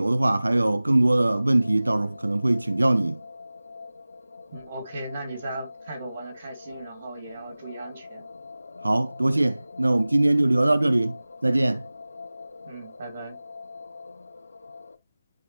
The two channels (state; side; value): inverted; both; correlation -0.99